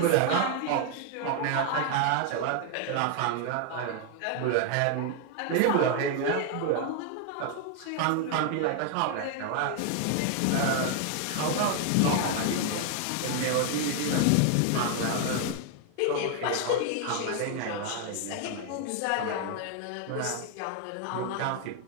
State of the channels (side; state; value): both; different; correlation 0.00